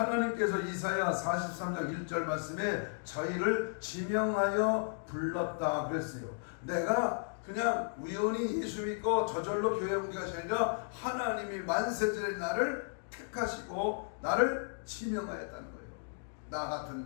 이사야 43장 1절 말씀에 저희를 지명하여 불렀다 그랬어요. 내가 그냥 우연히 예수 믿고 저절로 교회 온 것이 아니라 하나님이 만세전에 나를 택하시고 나를 지명하였다는 거예요. 나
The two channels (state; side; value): silent; right; digital silence